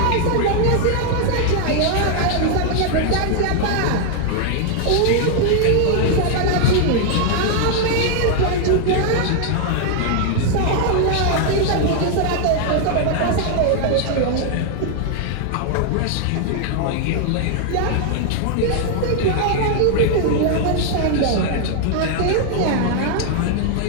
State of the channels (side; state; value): both; different; correlation 0.00